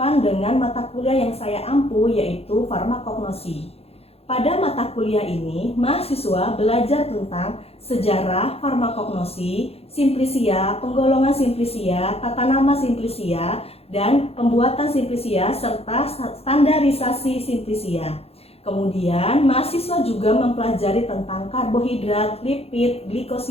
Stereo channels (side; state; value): right; late; 0.29 ms